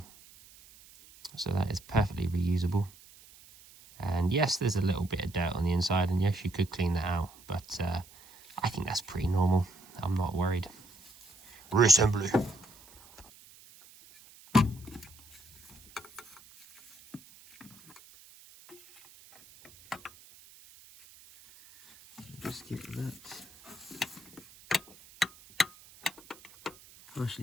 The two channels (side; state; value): right; noise; hiss, 23 dB below the sound